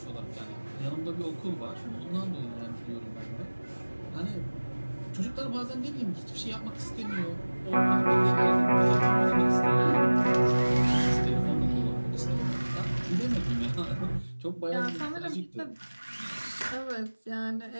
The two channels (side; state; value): both; inverted; correlation -1.00